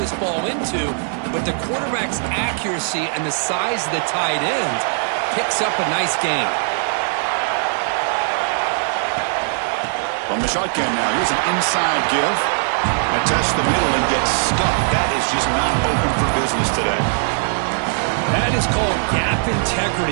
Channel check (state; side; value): silent; left; digital silence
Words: ball into, but the quarterback's accuracy and the size of the tight end picks up a nice gain. From the shotgun now, here's an inside give. I test the middle and get stuck. That is just not open for business today. That is called gap